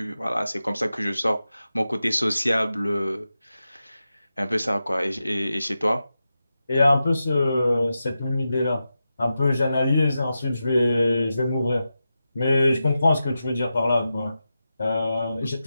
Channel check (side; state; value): both; inverted; correlation -0.91